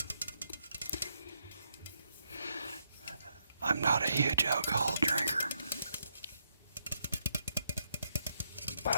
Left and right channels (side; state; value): both; inverted; correlation -0.79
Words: I'm not a huge alcohol drinker, but